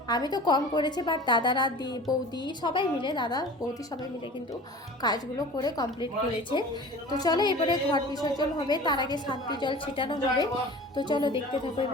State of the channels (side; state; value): both; normal; correlation 0.40